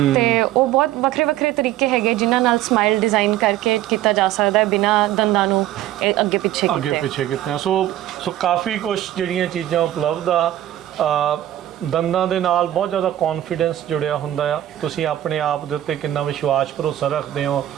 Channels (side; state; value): left; quieter; 13.1 dB